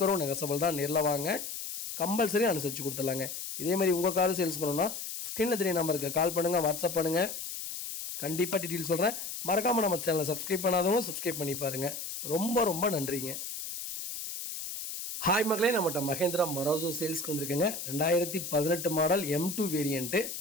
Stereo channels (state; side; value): noise; left; hiss, 7 dB below the sound